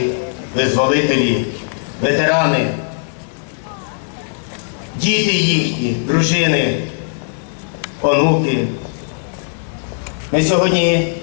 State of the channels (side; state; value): right; silent; digital silence